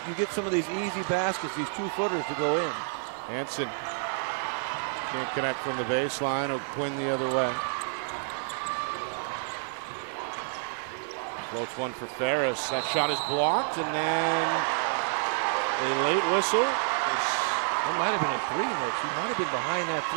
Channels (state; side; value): silent; left; digital silence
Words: you get some of these easy baskets, these 2-footers to go in. Hansen can't connect from the baseline. O'Quinn the other way. Floats one for Ferris. That shot is blocked, and then a late whistle. That might have been a 3, Nick. She might have been behind that